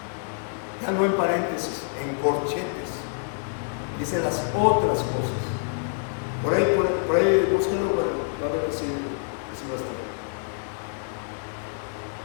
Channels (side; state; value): right; silent; digital silence